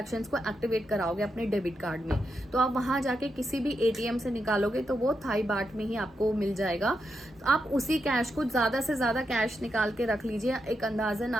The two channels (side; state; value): both; normal; correlation 0.85